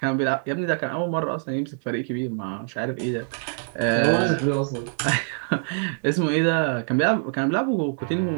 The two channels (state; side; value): silent; left; 62 dB below the other